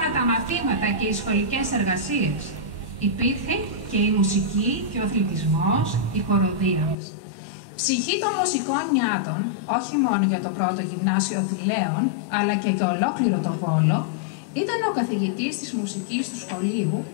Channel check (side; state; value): right; drops out; at 7.0 s